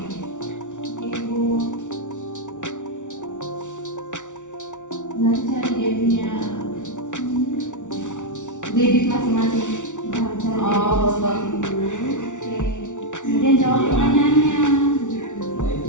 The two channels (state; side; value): late; right; 0.86 ms